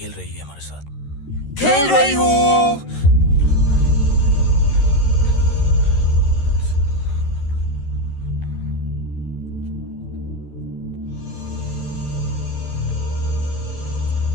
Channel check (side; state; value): right; late; 13 ms